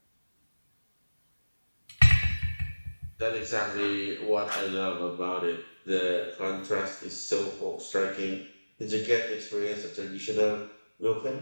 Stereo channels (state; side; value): inverted; both; correlation -1.00